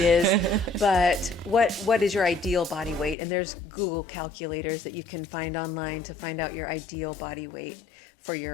but what is your ideal body weight? And there's Google calculators that you can find online to find out your ideal body weight for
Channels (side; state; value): right; drops out; at 3.2 s